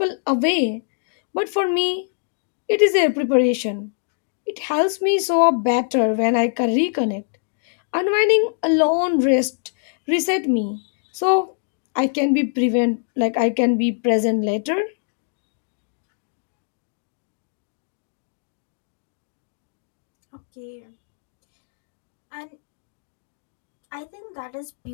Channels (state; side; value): silent; right; digital silence